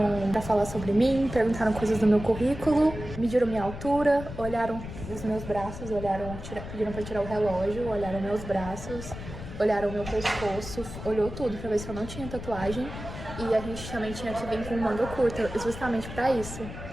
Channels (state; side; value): noise; left; rumble, 10 dB below the sound